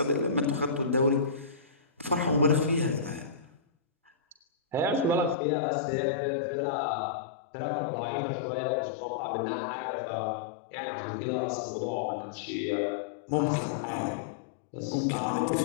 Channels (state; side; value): drops out; right; at 5.4 s